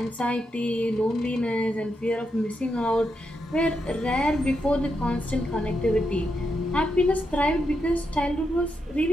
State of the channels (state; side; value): normal; both; correlation 0.83